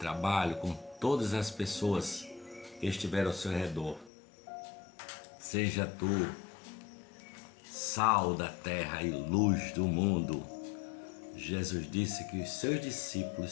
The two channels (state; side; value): drops out; right; at 4.1 s